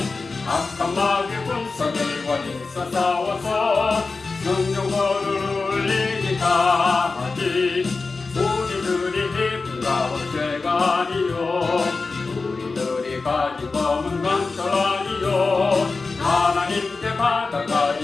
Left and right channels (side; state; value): right; quieter; 4.0 dB